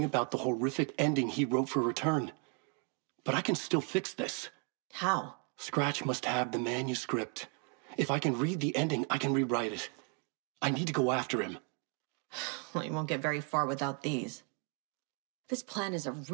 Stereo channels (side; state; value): left; quieter; 34.7 dB